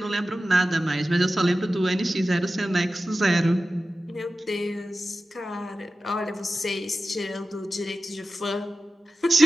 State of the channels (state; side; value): normal; both; correlation 0.94